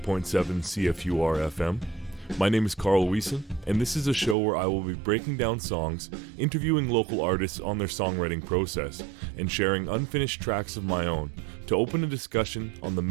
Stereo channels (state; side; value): drops out; left; at 4.4 s